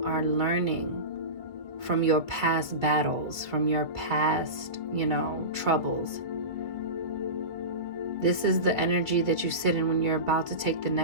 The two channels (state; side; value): late; left; 2.1 ms